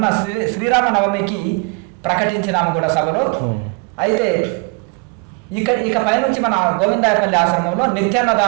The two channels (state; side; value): quieter; left; 31.1 dB